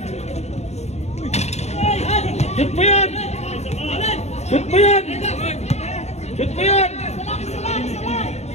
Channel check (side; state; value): right; late; 0.32 ms